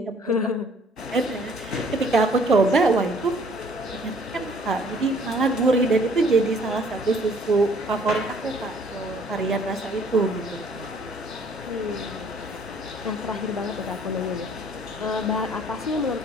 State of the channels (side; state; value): both; normal; correlation 0.59